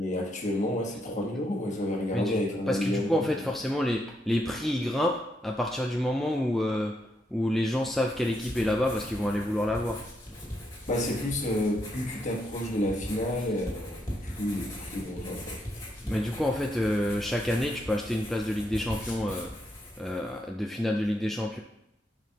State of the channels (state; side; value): normal; both; correlation 0.79